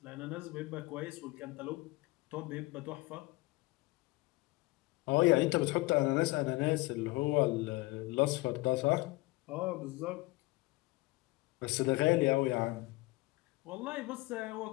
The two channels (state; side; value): quieter; right; 21.9 dB